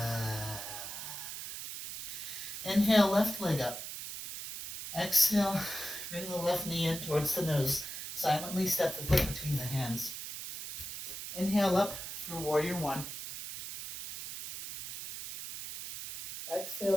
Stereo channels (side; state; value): right; noise; hiss, 7 dB below the sound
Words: Inhale, left leg up. Exhale, bring the left knee in towards the nose. Silently step the foot between the hands. Inhale up for Warrior One. Exhale